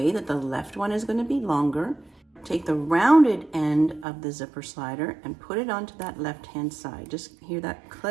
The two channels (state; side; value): drops out; left; at 4.0 s